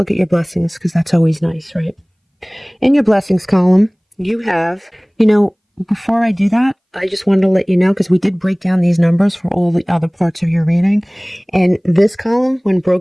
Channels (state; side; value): identical; both; correlation 1.00